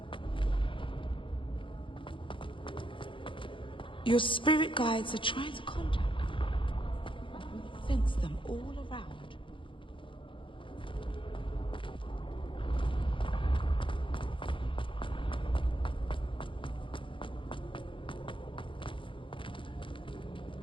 Your spirit guides are trying to contact you. I can sense them all around.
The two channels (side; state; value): right; late; 0.25 ms